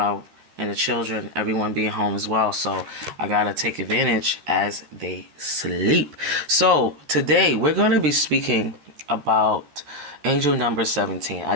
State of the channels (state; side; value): late; left; 13 ms